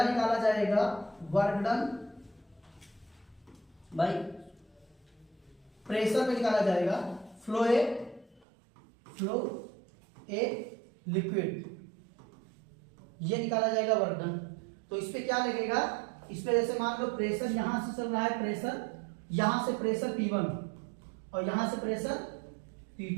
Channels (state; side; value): drops out; left; at 8.5 s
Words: निकाला जाएगा वर्क डन बाय प्रेशर पे निकाला जाएगा फ्लो ए लिक्विड, ये निकाला जाएगा वर्क डन। तो इस पे क्या लगेगा, इस पे जैसे मान लो प्रेशर यहां से चल रहा है, प्रेशर यहां से प्रेशर P1 और यहां से प्रेशर